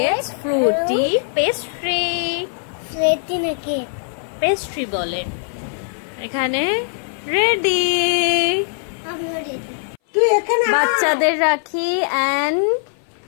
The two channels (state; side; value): silent; right; 61 dB below the other